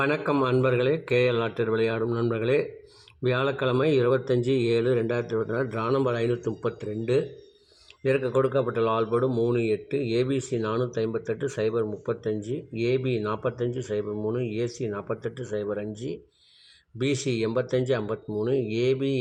அன்பர்களே. கேஎல் லாட்டரி விளையாடும் நண்பர்களே, வியாழக்கிழமை 25/7/2024, டிரா நம்பர் 532. இதற்கு கொடுக்கப்பட்ட லால்போர்டு 3, 8, ABC 458 035, AB 45 03, AC 48 05, BC 85 53, AB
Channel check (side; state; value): both; identical; correlation 1.00